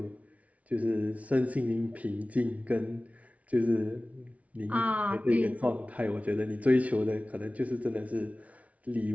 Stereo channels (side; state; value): left; late; 0.067 ms